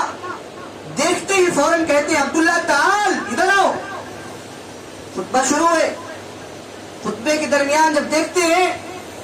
دیکھتے ہی فوراً کہتے ہیں عبداللہ تعال ادھر آؤ۔ خطبہ شروع ہے، خطبے کے درمیان جب دیکھتے ہیں،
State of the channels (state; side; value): identical; both; correlation 1.00